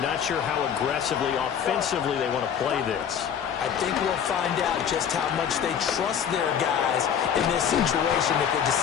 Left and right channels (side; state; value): right; quieter; 8.3 dB